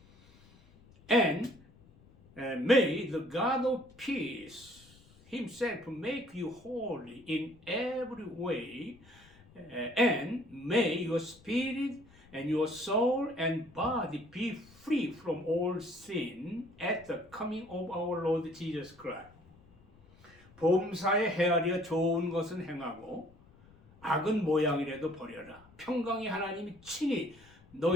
and may the God of peace Himself make you holy in every way, and may your spirit and your soul and body be free from all sin at the coming of our Lord Jesus Christ. 범사에 헤아려 좋은 것은 행하고 악은 모양이라도 버려라. 평강의 하나님이 친히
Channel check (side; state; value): left; noise; rumble, 26 dB below the sound